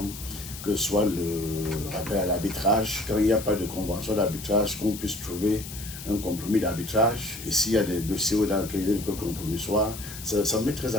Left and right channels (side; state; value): left; noise; hiss, 12 dB below the sound